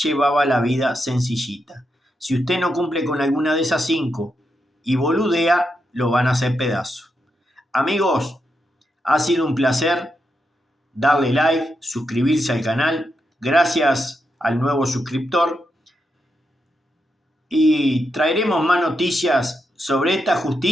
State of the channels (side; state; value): both; normal; correlation 0.84